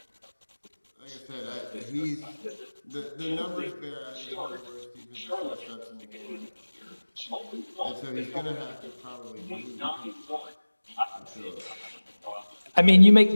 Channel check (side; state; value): both; inverted; correlation -1.00